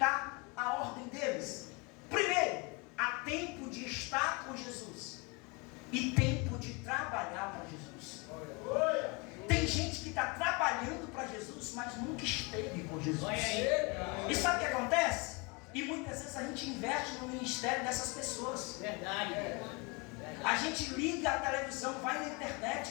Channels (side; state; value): right; quieter; 29.2 dB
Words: a ordem deles. Primeiro, há tempo de estar com Jesus e tempo de trabalhar para Jesus. Tem gente que está trabalhando para Jesus, mas nunca esteve com Jesus. E sabe o que acontece? E muitas vezes a gente investe no ministério dessas pessoas. Verdade. A gente liga a televisão, vai na